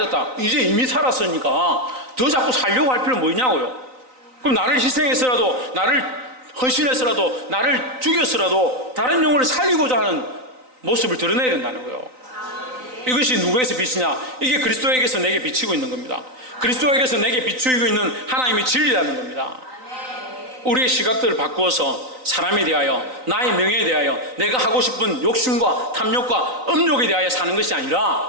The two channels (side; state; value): left; late; 3.9 ms